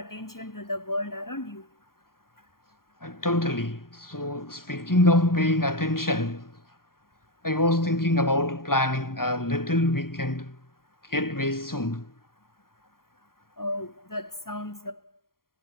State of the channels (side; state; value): right; late; 0.92 ms